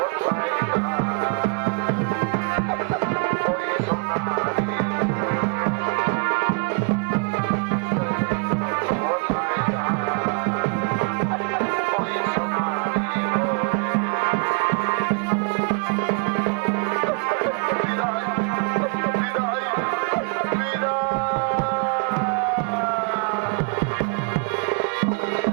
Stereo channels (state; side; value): quieter; left; 34.6 dB